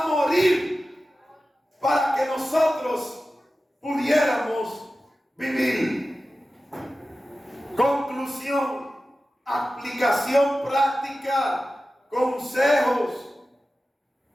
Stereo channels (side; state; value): both; normal; correlation 0.94